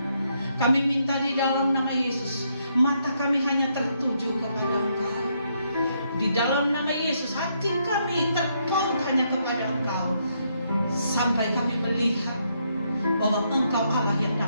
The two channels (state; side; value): inverted; both; correlation -0.76